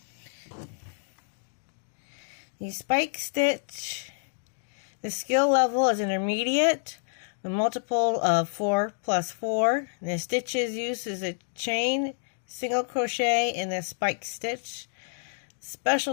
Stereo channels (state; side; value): silent; right; digital silence